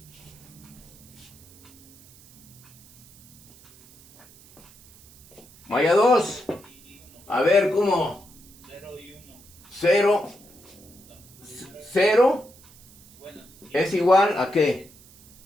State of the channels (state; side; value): noise; right; hiss, 24 dB below the sound